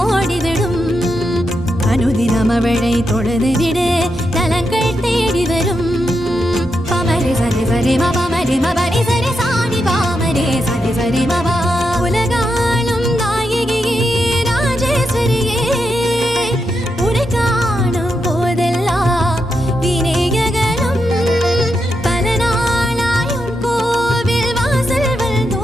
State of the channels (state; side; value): normal; both; correlation 0.85